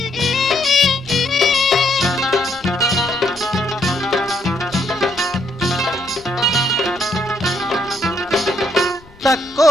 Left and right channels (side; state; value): left; noise; rumble, 24 dB below the sound